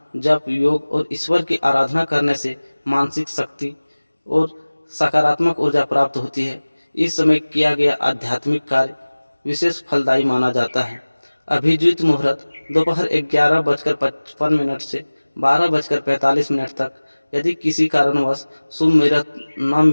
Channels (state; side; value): inverted; both; correlation -1.00